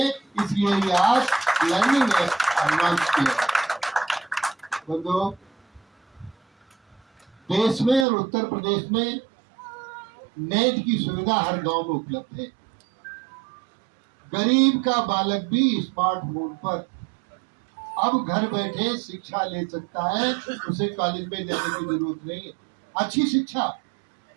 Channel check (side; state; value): left; drops out; at 8.1 s